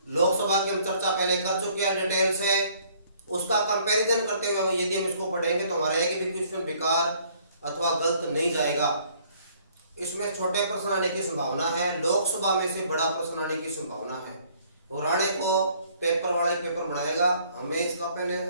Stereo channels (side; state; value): both; inverted; correlation -0.61